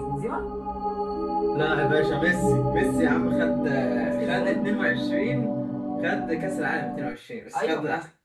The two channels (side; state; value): both; identical; correlation 1.00